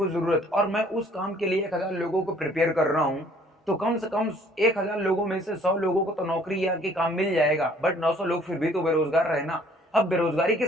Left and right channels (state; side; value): normal; both; correlation 0.58